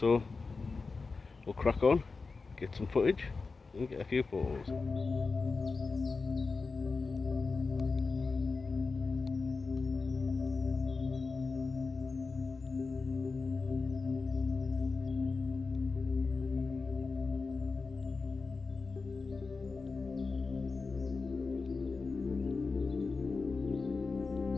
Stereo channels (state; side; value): quieter; right; 4.2 dB